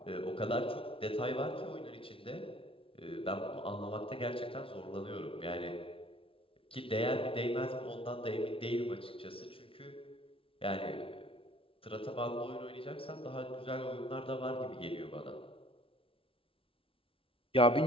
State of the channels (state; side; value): late; right; 0.26 ms